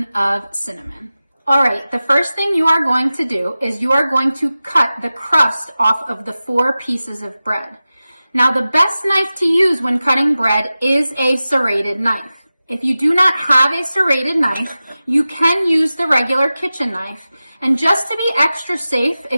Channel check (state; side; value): inverted; both; correlation -0.95